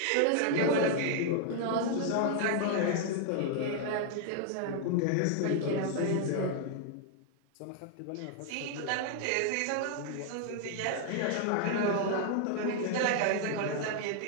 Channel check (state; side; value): different; both; correlation 0.00